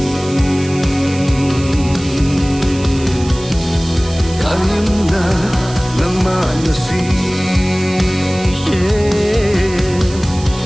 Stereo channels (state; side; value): noise; right; hiss, 16 dB below the sound